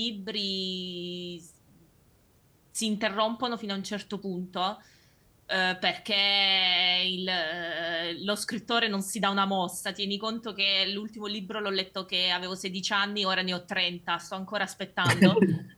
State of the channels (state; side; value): identical; both; correlation 1.00